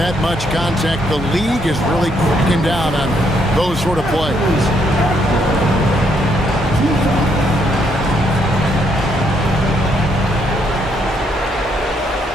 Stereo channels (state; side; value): normal; both; correlation 0.73